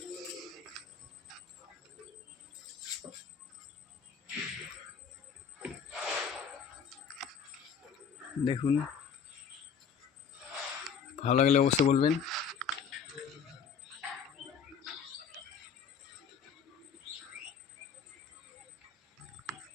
দেখুন, ভালো লাগলে অবশ্যই বলবেন।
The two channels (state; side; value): quieter; right; 6.6 dB